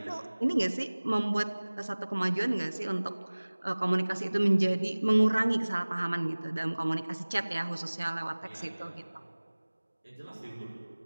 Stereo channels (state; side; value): inverted; both; correlation -1.00